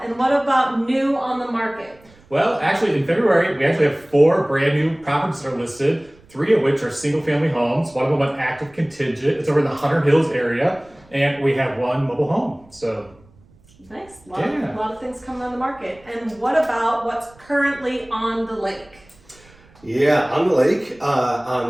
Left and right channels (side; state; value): right; noise; rumble, 28 dB below the sound